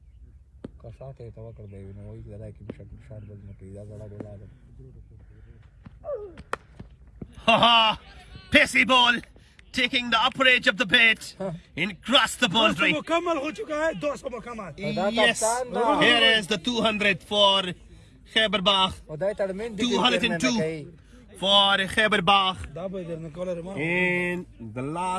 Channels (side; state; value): both; identical; correlation 1.00